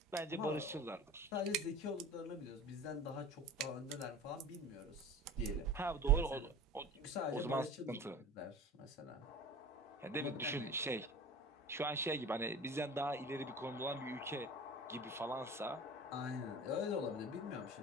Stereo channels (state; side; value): normal; both; correlation 0.37